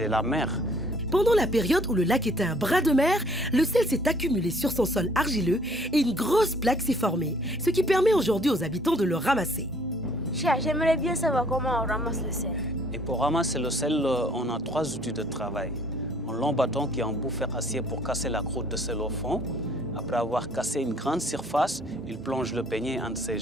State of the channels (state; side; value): normal; both; correlation 0.59